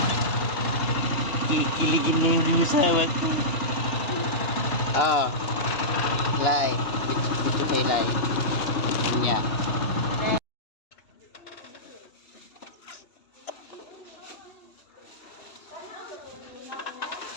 Kikiligin niya yung asawa ko. Oh. Lai. Video kay Lai. Niya.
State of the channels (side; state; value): right; late; 2.9 ms